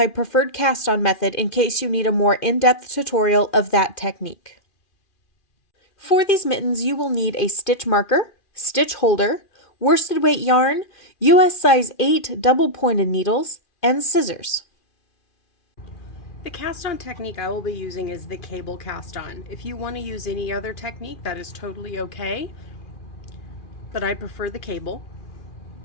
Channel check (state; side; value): late; right; 2.4 ms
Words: preferred cast-on method, in case you need a more in-depth tutorial of that technique. For these mittens, you will need a stitch marker, stitch holder, worsted weight yarn, US size 8 double-pointed needles, and scissors. The cast-on technique I will be using is the cable cast-on. If you want to use any other technique, that is totally okay, but I prefer the cable.